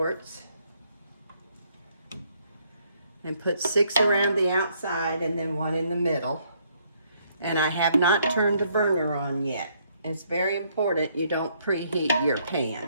and put 6 around the outside and then 1 in the middle. And I have not turned the burner on yet. It's very important you don't preheat your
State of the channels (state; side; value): inverted; both; correlation -0.69